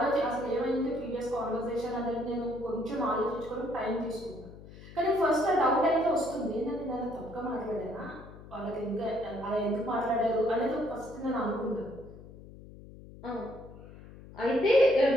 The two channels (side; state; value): left; noise; hum, 17 dB below the sound